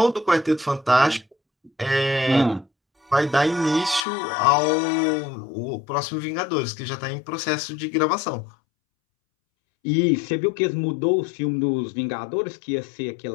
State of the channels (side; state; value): right; drops out; at 4.0 s